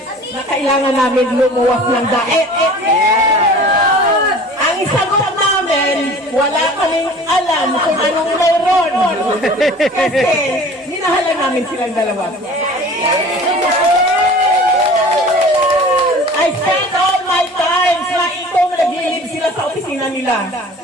na kailangan namin lumuwas ng daet? Ang sagot namin, wala kaming alam kung anong mayroon. Kasi minahalan namin silang dalawa. I spend all my time sa itong naglilib sila sa opisina nila.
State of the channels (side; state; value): both; normal; correlation 0.44